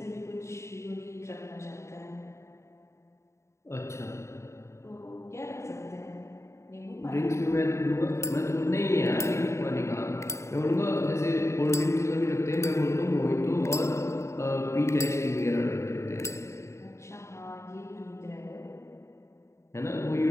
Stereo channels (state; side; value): late; right; 0.14 ms